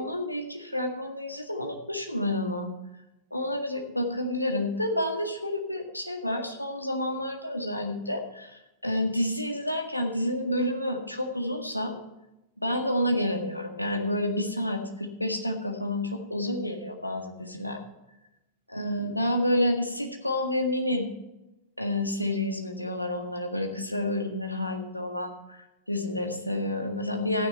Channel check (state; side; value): inverted; both; correlation -0.62